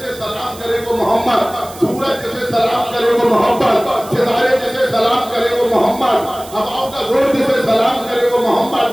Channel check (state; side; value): noise; right; hiss, 18 dB below the sound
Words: सलाम करे वो मोहम्मद, सूरज जैसे सलाम करे वो मोहम्मद, सितारे जैसे सलाम करे वो मोहम्मद, हवाओं का जोर जैसे सलाम करे वो मोहम्मद,